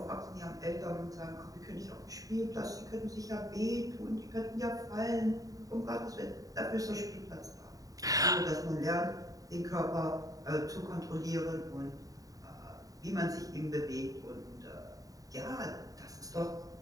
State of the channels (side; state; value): left; late; 0.17 ms